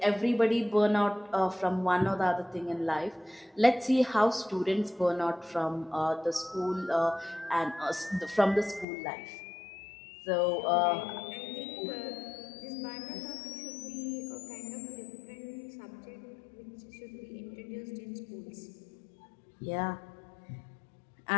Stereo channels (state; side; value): drops out; right; at 8.8 s